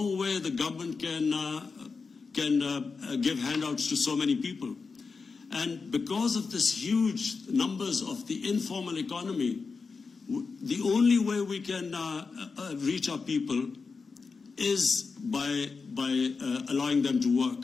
way the government can give handouts to so many people. And because of this huge numbers of the informal economy, the only way we can reach our people is by allowing them to work.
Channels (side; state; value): right; quieter; 4.7 dB